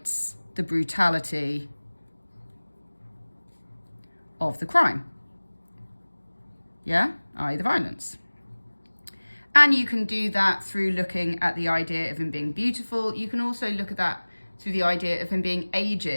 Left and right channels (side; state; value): both; inverted; correlation -1.00